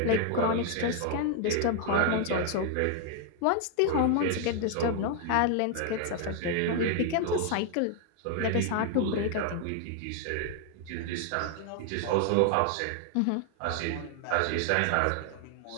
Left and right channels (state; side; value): different; both; correlation 0.00